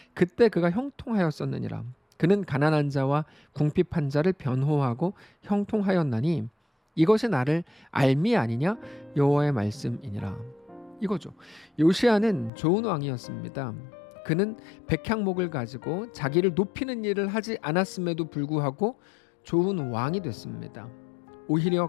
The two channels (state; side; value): drops out; right; at 12.5 s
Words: 그때 그가 형통하였었느니라. 그는 가난한 자와 궁핍한 자를 변호하고 형통하였나니 이것이 나를 알미 아니냐? 여호와의 말씀이니라. 이거죠. 요시야는 좋은 왕이었습니다. 그는 백향목을 가지고 자기를 높이는 일을 하지 않았음에도 불구하고 좋은 왕이 됐습니다. 오히려